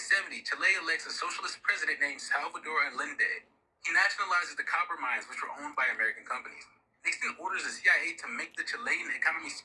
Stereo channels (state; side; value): identical; both; correlation 1.00